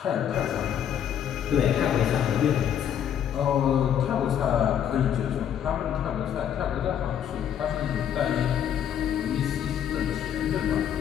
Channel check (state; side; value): quieter; right; 9.4 dB